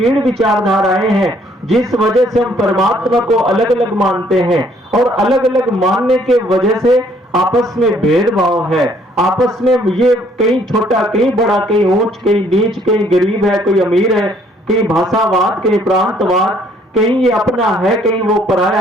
विचारधाराएं हैं जिस वजह से हम परमात्मा को अलग अलग मानते हैं, और अलग अलग मानने के वजह से आपस में भेदभाव है। आपस में ये कहीं छोटा कहीं बड़ा, कहीं ऊंच कहीं नीच, कहीं गरीब है कोई अमीर है, कहीं भाषावाद कहीं प्रांतवाद, कहीं ये अपना है कहीं वो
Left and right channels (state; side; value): normal; both; correlation 0.63